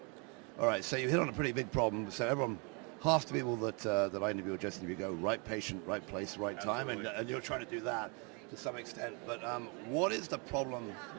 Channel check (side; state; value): left; quieter; 33.6 dB